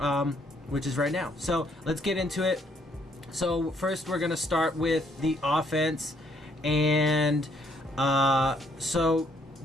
which is right now. So let's get into it. So first we're going to start with the offense. And so,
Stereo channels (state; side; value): normal; both; correlation 0.69